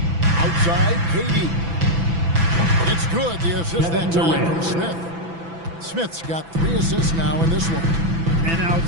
Outside, KD. It's good, the assist that time from Smith. Smith's got 3 assists now in this one. An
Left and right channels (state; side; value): late; left; 6.0 ms